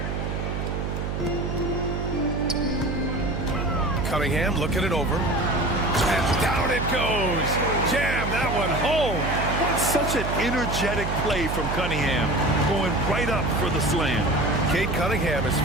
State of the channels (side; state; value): right; noise; hum, 3 dB below the sound